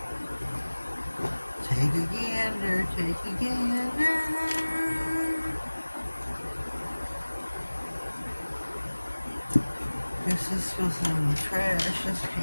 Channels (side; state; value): both; inverted; correlation -1.00